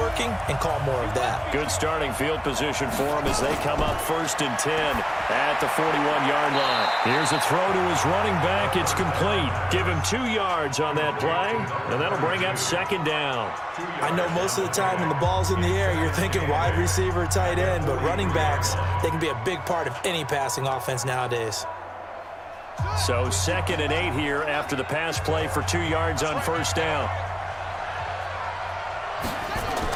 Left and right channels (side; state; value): both; identical; correlation 1.00